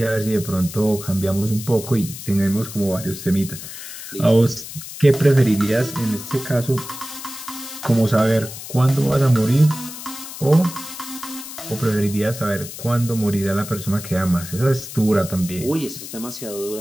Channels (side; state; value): left; noise; hiss, 11 dB below the sound